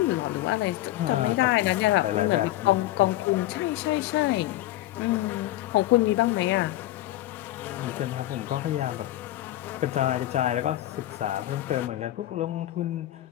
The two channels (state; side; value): quieter; right; 15.3 dB